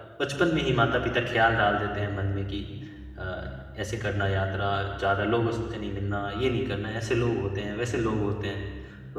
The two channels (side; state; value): both; identical; correlation 1.00